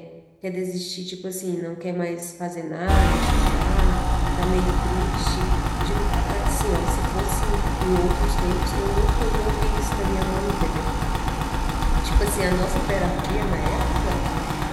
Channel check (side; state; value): both; identical; correlation 1.00